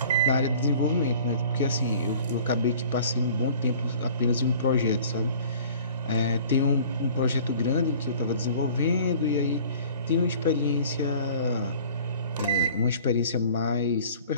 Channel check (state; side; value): inverted; both; correlation -0.48